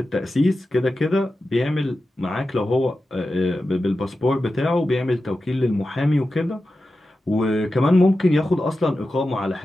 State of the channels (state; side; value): normal; both; correlation 0.92